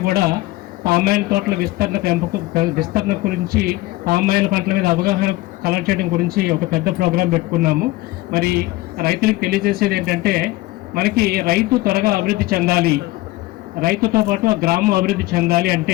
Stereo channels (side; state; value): right; quieter; 19.0 dB